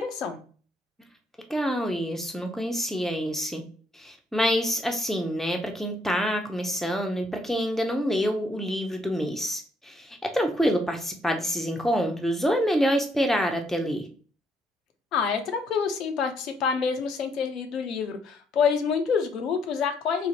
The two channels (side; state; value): both; normal; correlation 0.72